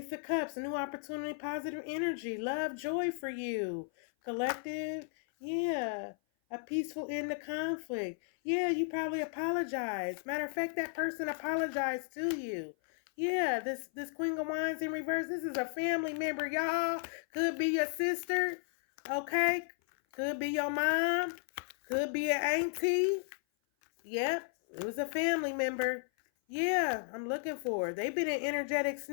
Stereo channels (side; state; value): right; silent; 55 dB below the other